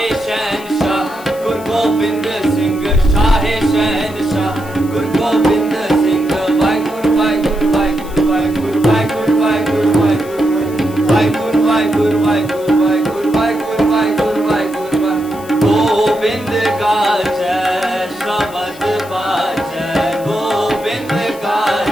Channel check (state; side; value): noise; left; hiss, 20 dB below the sound